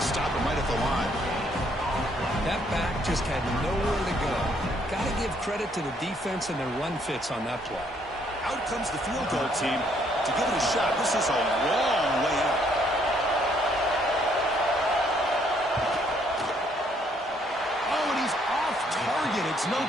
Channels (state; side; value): normal; both; correlation 0.68